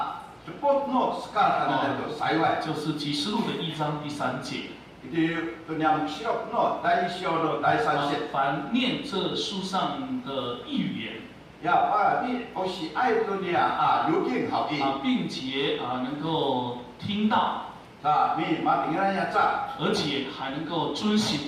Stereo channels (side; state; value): both; identical; correlation 1.00